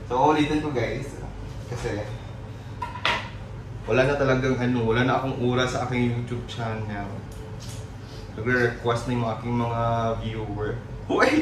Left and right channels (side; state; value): both; identical; correlation 1.00